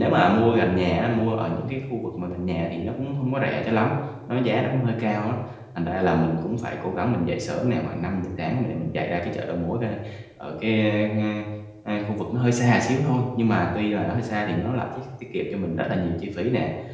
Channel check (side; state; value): both; identical; correlation 1.00